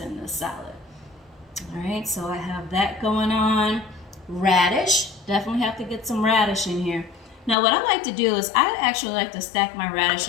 in this salad. All right, so I have that going on. Radish, definitely have to get some radish in here. Now what I like to do is I actually like to stack my radish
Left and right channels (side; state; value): right; drops out; at 7.6 s